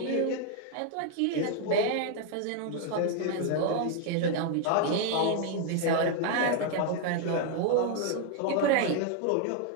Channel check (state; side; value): different; both; correlation 0.00